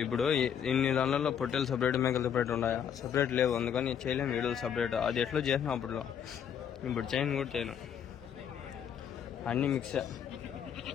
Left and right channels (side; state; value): right; quieter; 8.5 dB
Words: ఇప్పుడు ఇన్ని దానిలో పొట్టేలు సపరేట్ మేకలు సపరేట్ ఉన్నాయా? సపరేట్ లేవు. అందుకని చేయలేము వీడియోలు సపరేట్. అది ఎట్లా చేసినా అప్పుడులో ఇప్పుడు చేయను కూడా చేయను. అన్ని మిక్స్.